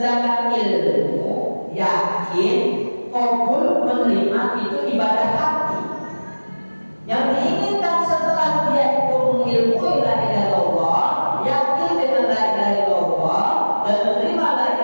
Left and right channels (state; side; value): inverted; both; correlation -1.00